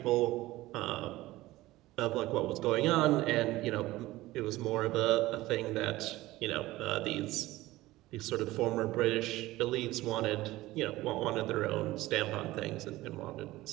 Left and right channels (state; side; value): quieter; left; 17.7 dB